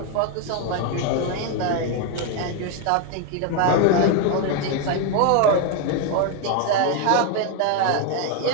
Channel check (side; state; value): both; different; correlation 0.01